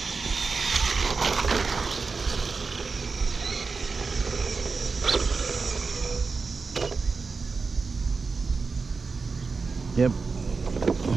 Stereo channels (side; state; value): left; quieter; 4.5 dB